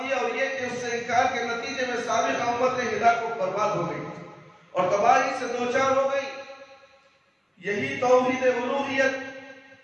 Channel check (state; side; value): identical; both; correlation 1.00